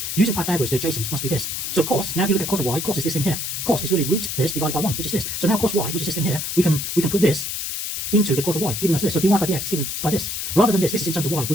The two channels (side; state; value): left; noise; hiss, 3 dB below the sound